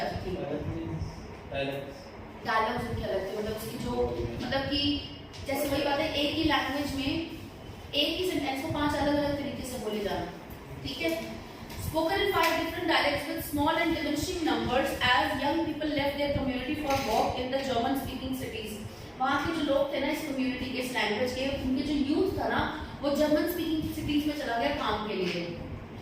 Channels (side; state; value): both; identical; correlation 1.00